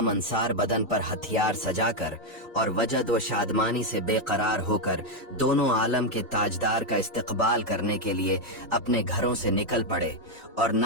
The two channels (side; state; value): both; normal; correlation 0.03